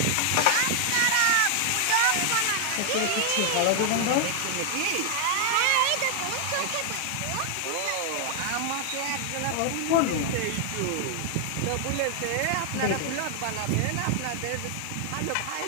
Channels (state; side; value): different; both; correlation 0.00